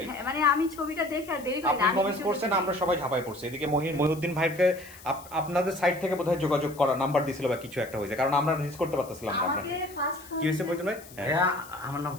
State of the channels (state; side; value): noise; left; hiss, 20 dB below the sound